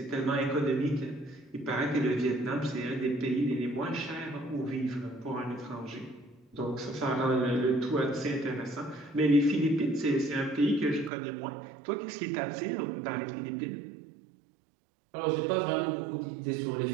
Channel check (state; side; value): drops out; left; at 11.1 s